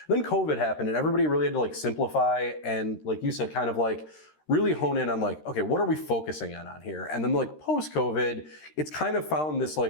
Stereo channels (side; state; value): right; late; 13 ms